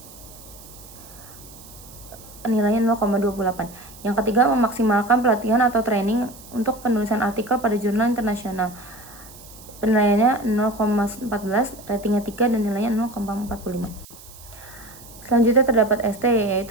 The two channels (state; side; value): noise; right; hiss, 20 dB below the sound